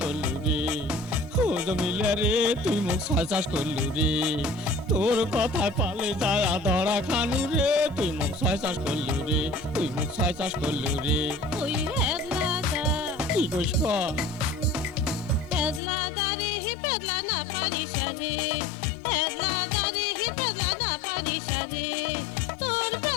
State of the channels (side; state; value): right; drops out; at 15.8 s